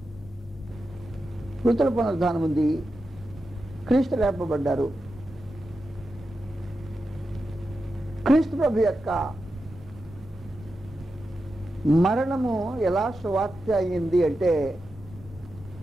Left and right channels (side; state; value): both; normal; correlation 0.90